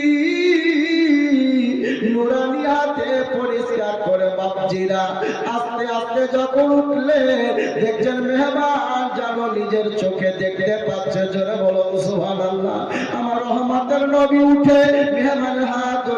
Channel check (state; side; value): identical; both; correlation 1.00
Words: নুরানি হাতে পরিষ্কার করে বাপজিরা আস্তে আস্তে যখন উঠলে দেখছেন মেহমান যেন নিজের চোখে দেখতে পাচ্ছে। জোরে বলুন সুবহানাল্লাহ। আমার রহমতের নবী উঠে মেহমানের হাত